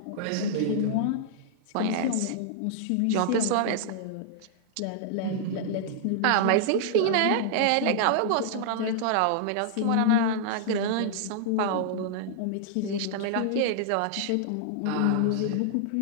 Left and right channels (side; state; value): both; different; correlation -0.01